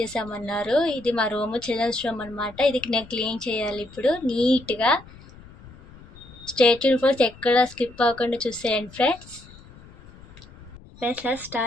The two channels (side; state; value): left; noise; rumble, 21 dB below the sound